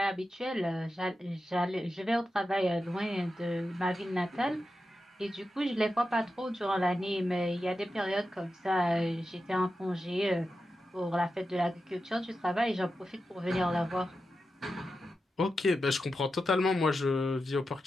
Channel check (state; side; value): normal; both; correlation 0.90